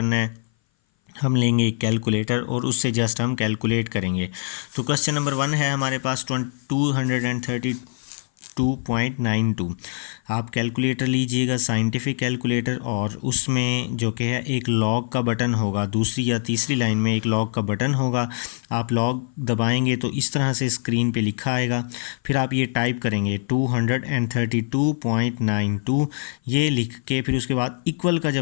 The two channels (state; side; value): silent; right; 58 dB below the other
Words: है। हम लेंगे एक कैलकुलेटर और उससे जस्ट हम कैलकुलेट करेंगे। तो क्वेश्चन नंबर 1 है हमारे पास 232.92। आप कैलकुलेटर लीजिएगा, साइंटिफिक कैलकुलेटर, और उसमें जो कि है एक लॉग का बटन होगा, दूसरी या तीसरी लाइन में एक लॉग का बटन होगा। आप लॉग दबाएंगे तो इस तरह से स्क्रीन पे लिखा आएगा। फिर आप ये टाइप करेंगे 232.92, ये लिख के फिर उसके बाद इक्वल का